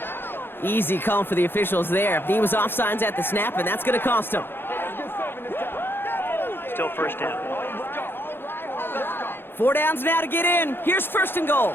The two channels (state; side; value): late; right; 0.10 ms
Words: Easy call for the officials there. He was offsides at the snap, and that's going to cost him. Still first down. 4 downs now to get in. Here's first and goal.